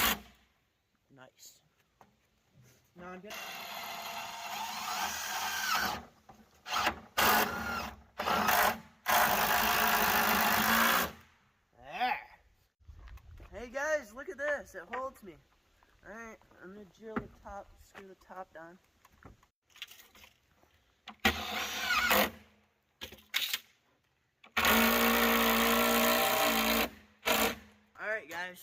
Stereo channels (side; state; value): both; identical; correlation 1.00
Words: Nice. Now I'm gonna... There. Hey guys, look at this. It holds me. Alright, I'm gonna drill the top, screw the top down. Alright guys,